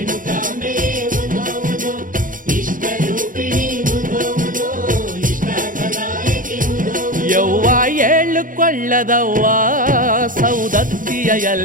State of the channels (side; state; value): left; late; 0.39 ms